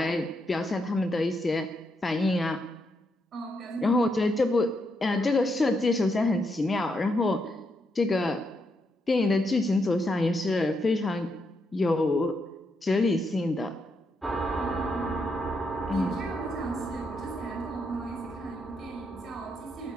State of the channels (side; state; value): both; normal; correlation 0.80